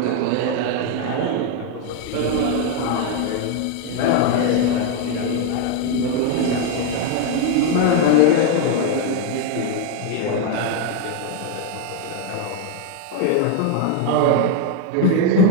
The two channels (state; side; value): different; both; correlation 0.01